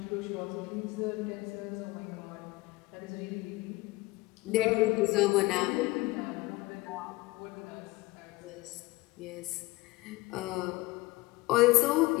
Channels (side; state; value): right; quieter; 20.7 dB